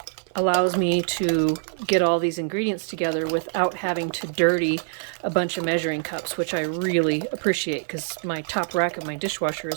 allows me to get all these ingredients together without having to dirty a bunch of measuring cups, which I really appreciate because my top rack of my dishwasher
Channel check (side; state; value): left; silent; 62 dB below the other